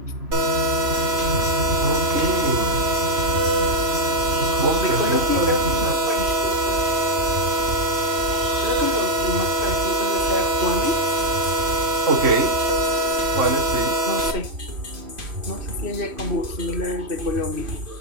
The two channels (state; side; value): late; left; 3.1 ms